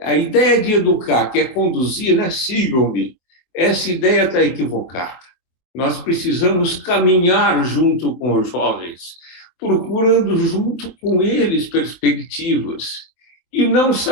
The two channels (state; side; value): late; right; 23 ms